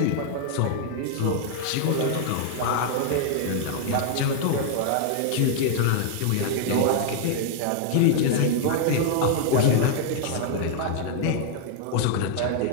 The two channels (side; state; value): both; different; correlation -0.01